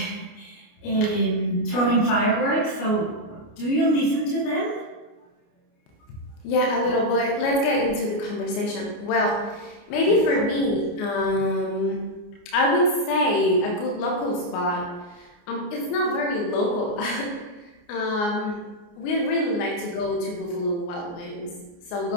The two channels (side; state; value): right; late; 29 ms